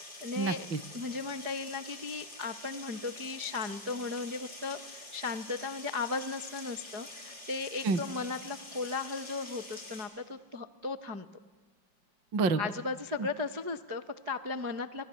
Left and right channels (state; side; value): late; left; 4.8 ms